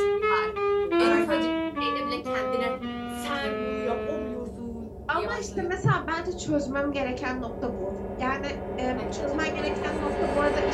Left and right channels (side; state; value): both; identical; correlation 1.00